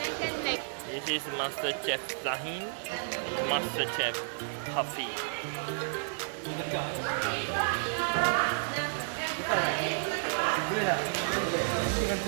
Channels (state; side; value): silent; left; 57 dB below the other